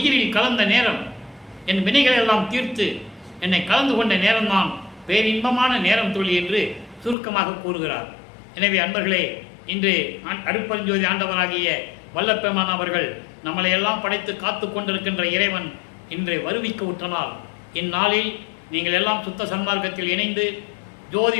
கலந்த நேரம், என் வினைகள் எல்லாம் தீர்த்து என்னை கலந்து கொண்ட நேரம்தான் பேரின்பமான நேரம் தோழி என்று சுருக்கமாக கூறுகிறார். எனவே அன்பர்களே, இன்று அருட்பெருஞ்சோதி ஆண்டவராகிய வல்லப்பெருமான் அவர்கள் நம்மளை எல்லாம் படைத்து காத்து கொண்டிருக்கின்ற இறைவன் இன்று வருவிக்க உற்றனால், இந்நாளில் நீங்கள் எல்லாம் சுத்த சன்மார்க்கத்தில் இணைந்து ஜோதி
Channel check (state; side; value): drops out; right; at 7.2 s